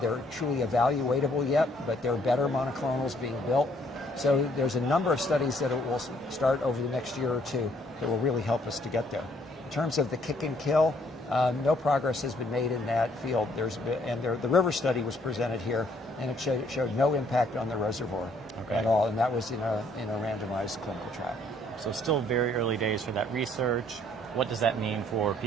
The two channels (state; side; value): normal; both; correlation 0.65